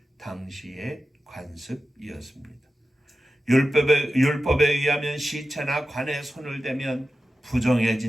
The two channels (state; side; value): normal; both; correlation 0.93